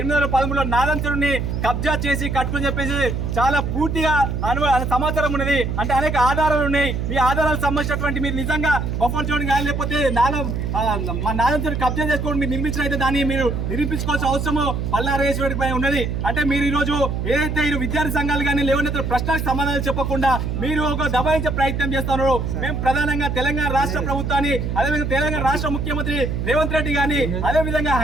నాదంచుడిని కబ్జా చేసి కట్టుకుని చెప్పేసి చాలా పూర్తిగా సమాచారం ఉన్నది. అంటే అనేక ఆధారాలు ఉన్నాయి. మీ ఆధారాలకు సంబంధించినటువంటి మీరు నిజంగా బఫర్ జోన్ కానీ లేకపోతే నాలం చెరువు కబ్జా చేసుకోవడం మీరు నిర్మించిన అయితే దాన్ని మీరు నిరూపించుకోవాల్సిన అవసరము పల్లారేశ్వరి పై ఉన్నది. అంటే మీరు ఈ రోజు ఏదైతే ఈ విద్యార్థి సంఘాలు కానీ లేవనెత్తిన ప్రశ్నలకు సమాధానాలు చెప్పకుండా మీరు ఒక దబాయించే ప్రయత్నం చేస్తున్నారు. మేము ప్రధానంగా తెలంగాణ రాష్ట్ర ప్రభుత్వాన్ని, అదేవిధంగా తెలంగాణ రాష్ట్ర ముఖ్యమంత్రి రేవంత్ రెడ్డి గాని, అదేవిధంగా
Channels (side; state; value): right; noise; hum, 2 dB below the sound